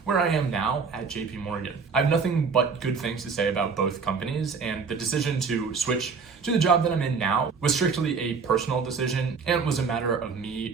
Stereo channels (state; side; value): quieter; left; 5.3 dB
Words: where I am now at JP Morgan. I have nothing but good things to say about both companies, and the decision to switch to the job that I'm in now was strictly a personal decision and was a matter of